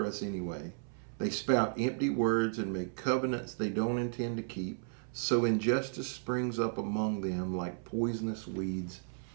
us anyway?' They spout empty words and make covenants they don't intend to keep. So injustice springs up among them like poisonous weeds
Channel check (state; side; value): silent; left; 55 dB below the other